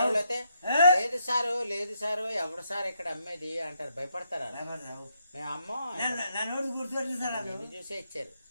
వాళ్ళు అయితే లేదు సారు ఎవడు సార్ ఇక్కడ అమ్మేది అంటారు, భయపడతారు. మేము అమ్మో నా నోరు గుర్తుపట్టలేదు సార్, నిన్ను చూసే ఇచ్చారు.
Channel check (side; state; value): both; inverted; correlation -0.77